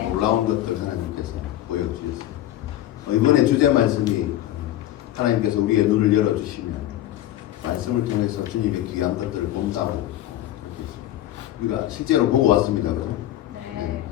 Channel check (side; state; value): right; quieter; 13.4 dB